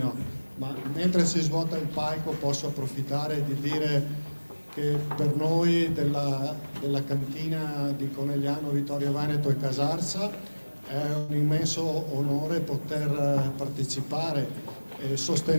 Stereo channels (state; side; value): inverted; both; correlation -1.00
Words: ma mentre si svuota il palco posso approfittare di dire che per noi della cantina di Conegliano, Vittorio Veneto e Casarsa è un immenso onore poter partecipare e